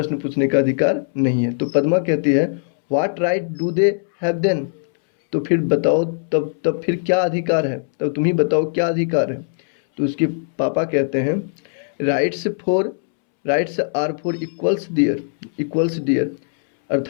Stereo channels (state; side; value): silent; right; 66 dB below the other